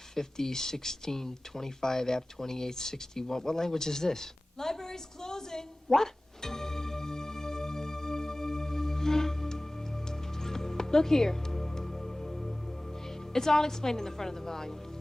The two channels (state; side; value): normal; both; correlation 0.98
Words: 50, 16, 25, app 28, 61. What language is this? Library's closing. What? Look here. It's all explained in the front of the volume.